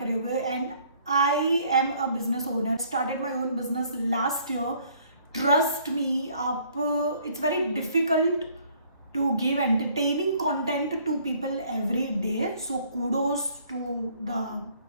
हुए, and I am a business owner, started my own business last year. Trust me, आप, it's very difficult to give entertaining content to people every day. So kudos to the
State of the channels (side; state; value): both; inverted; correlation -0.61